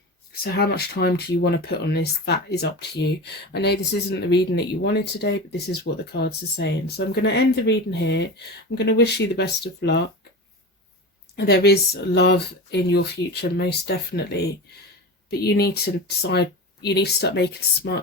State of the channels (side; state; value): both; normal; correlation 0.27